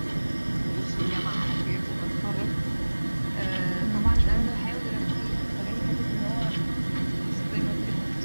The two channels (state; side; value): inverted; both; correlation -1.00